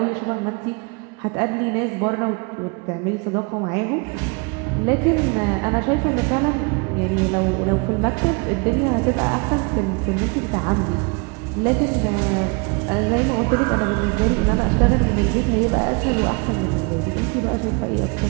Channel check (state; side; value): quieter; left; 31.0 dB